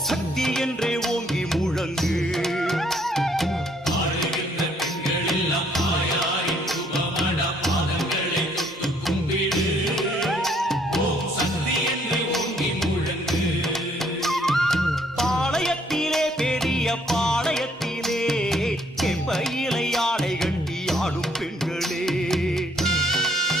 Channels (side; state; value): both; normal; correlation 0.66